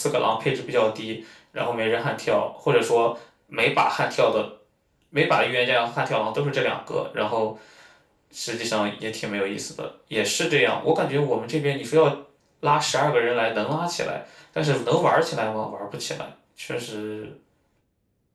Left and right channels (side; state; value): both; identical; correlation 1.00